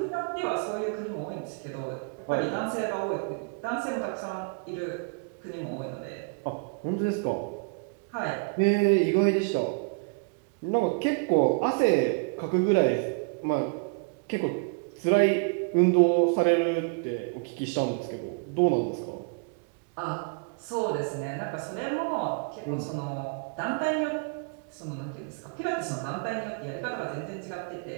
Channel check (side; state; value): left; quieter; 36.3 dB